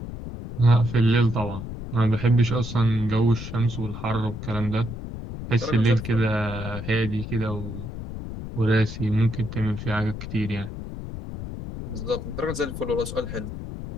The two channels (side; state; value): left; noise; rumble, 8 dB below the sound